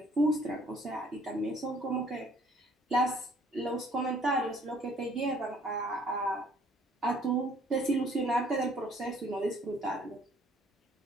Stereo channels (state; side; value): normal; both; correlation 0.59